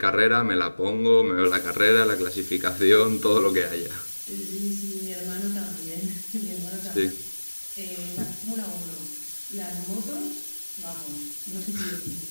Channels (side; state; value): both; inverted; correlation -1.00